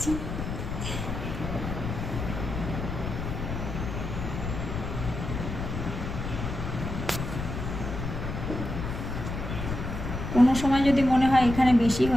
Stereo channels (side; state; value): left; noise; rumble, 5 dB below the sound